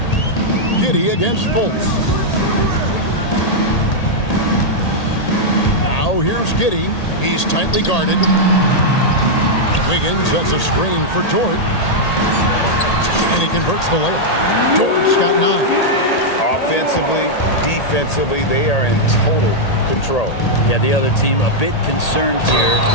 Giddey against Fultz. Now here's Giddey. He's tightly guarded. Wiggins sets a screen for Dort. And he converts the layup. Dort's got 9. Offensively, defensively, they are in total control. Yeah, the other team a bit concerned here.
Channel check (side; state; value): right; late; 1.8 ms